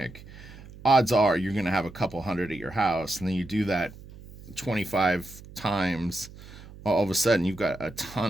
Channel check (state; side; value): noise; right; hum, 18 dB below the sound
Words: odds are you're going to have a couple hundred at your house, and then you do that 25 times, all of a sudden you've got a